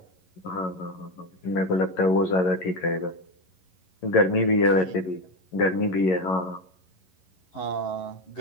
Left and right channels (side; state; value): right; late; 11 ms